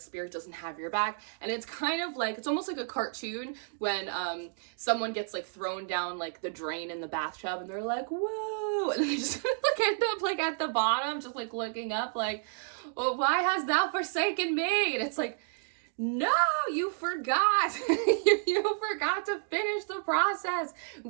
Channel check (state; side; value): silent; left; digital silence